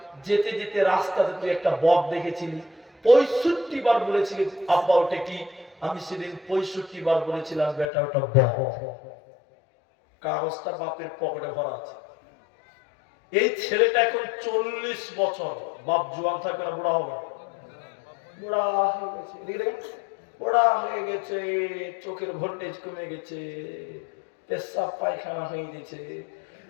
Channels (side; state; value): right; drops out; at 7.9 s